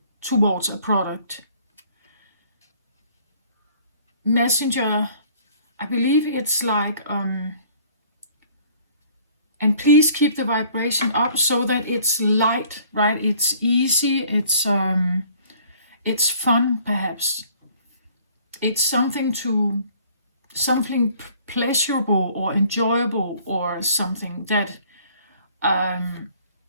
towards a product. Messenger, I believe it's like and please keep the vibration up so that it's light, right? It's easy, it's fun perhaps. It's something pleasurable or enjoyable, or something that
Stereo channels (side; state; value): both; inverted; correlation -0.56